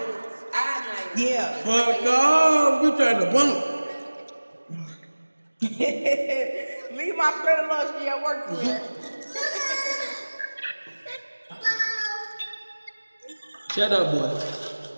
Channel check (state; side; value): inverted; both; correlation -1.00